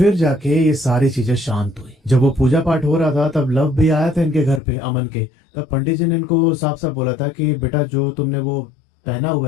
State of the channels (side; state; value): right; drops out; at 4.6 s